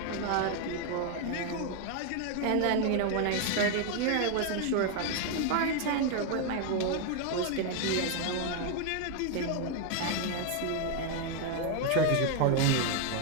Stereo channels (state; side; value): different; both; correlation 0.01